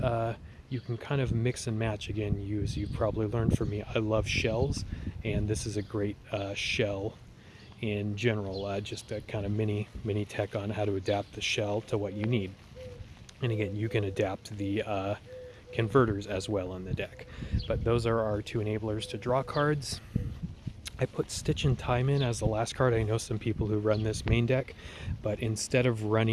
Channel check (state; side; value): identical; both; correlation 1.00